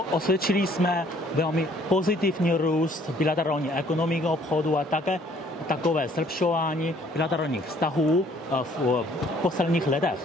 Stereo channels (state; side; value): normal; both; correlation 0.60